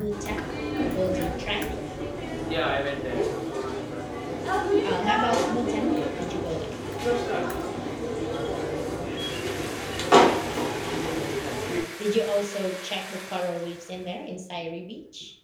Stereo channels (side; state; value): both; identical; correlation 1.00